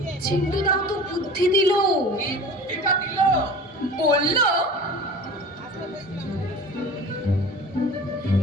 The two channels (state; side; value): normal; both; correlation 0.39